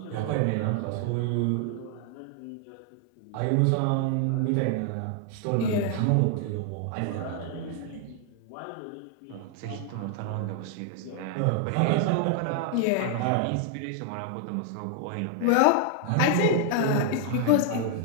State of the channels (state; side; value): different; both; correlation 0.00